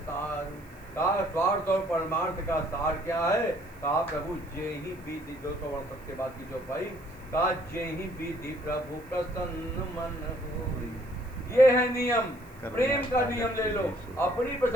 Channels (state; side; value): noise; right; hiss, 27 dB below the sound